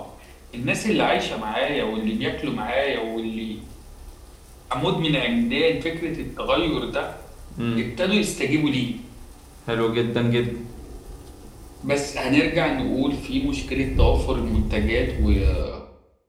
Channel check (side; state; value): both; identical; correlation 1.00